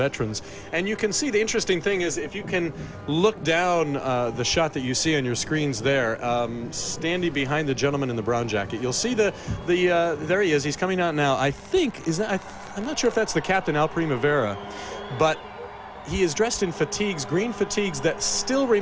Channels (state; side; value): identical; both; correlation 1.00